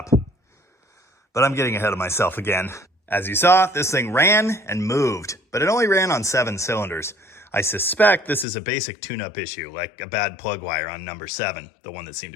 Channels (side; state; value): right; drops out; at 8.5 s